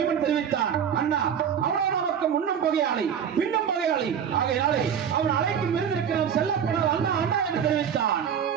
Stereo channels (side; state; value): left; quieter; 8.1 dB